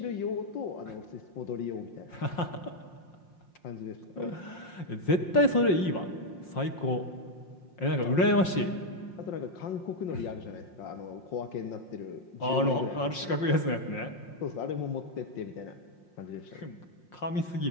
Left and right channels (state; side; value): late; right; 5.6 ms